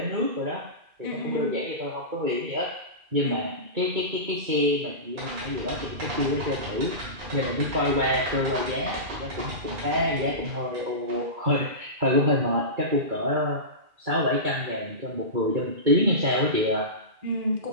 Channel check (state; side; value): late; left; 2.4 ms